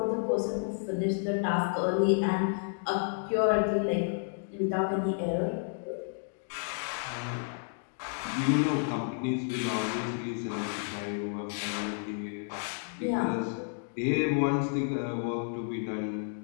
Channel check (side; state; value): right; silent; digital silence